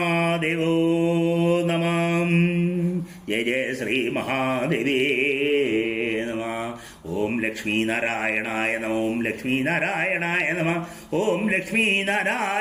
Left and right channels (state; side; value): identical; both; correlation 1.00